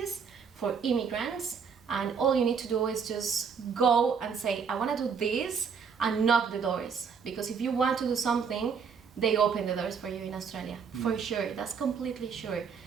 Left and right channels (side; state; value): left; quieter; 6.3 dB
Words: for immigrants, and all you need to do is just go and say, I want to do this, and knock the doors. Because if you want to do something, they open the doors for you in Australia, for sure. That's completely sure.